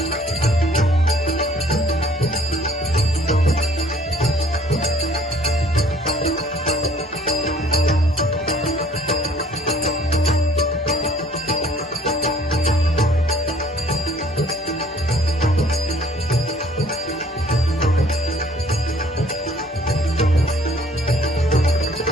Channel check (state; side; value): normal; both; correlation 0.56